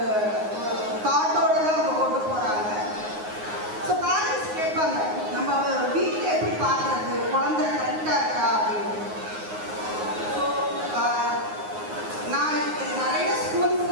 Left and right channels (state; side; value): late; left; 9.5 ms